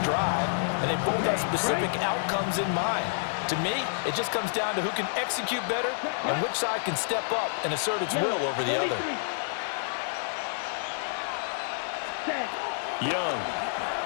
drive, and they both have specific outcomes in mind. To me, it just comes down to who can execute better and which side can step up and assert its will over the other. Young.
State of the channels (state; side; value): silent; right; 56 dB below the other